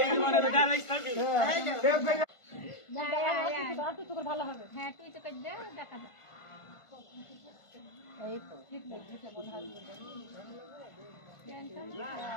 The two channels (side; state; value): right; late; 1.5 ms